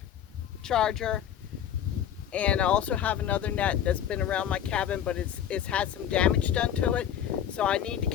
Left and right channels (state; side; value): quieter; right; 9.8 dB